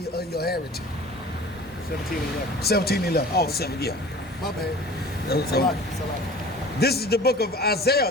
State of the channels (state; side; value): normal; both; correlation 0.43